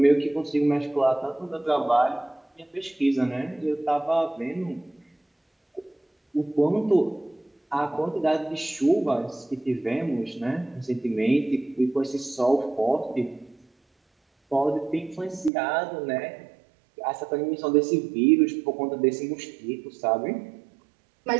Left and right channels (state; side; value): drops out; left; at 15.5 s